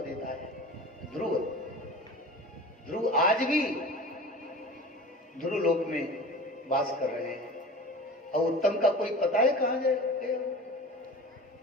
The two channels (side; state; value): both; normal; correlation 0.37